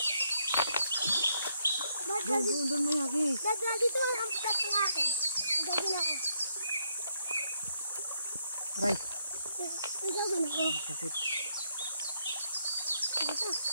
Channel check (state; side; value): inverted; both; correlation -0.75